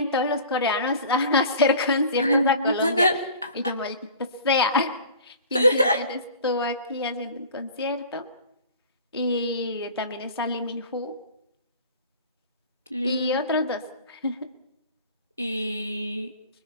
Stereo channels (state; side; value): inverted; both; correlation -0.42